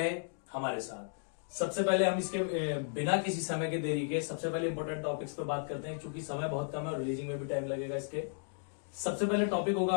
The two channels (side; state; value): right; silent; digital silence